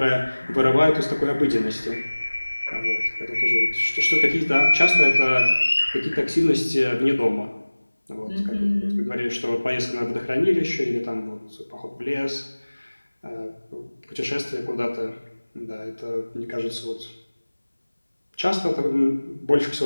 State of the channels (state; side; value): inverted; both; correlation -1.00